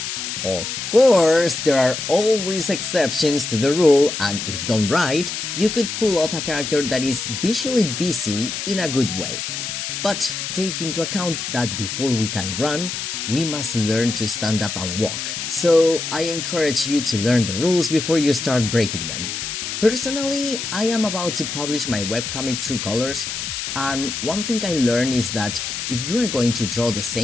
Of course, there are always exceptions to the rule, and if done right, you could pull off a character that is visually busy in a good way. But take into account that before we can run, we must learn to stand up and walk. So I encourage you to learn the rules before you start breaking them. Personally, I am about to publish my webcomic True Colors, and one thing I learned is that if you are going to draw the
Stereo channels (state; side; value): noise; left; hiss, 5 dB below the sound